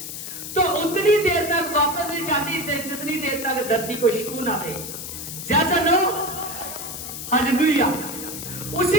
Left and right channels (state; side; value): noise; left; hiss, 8 dB below the sound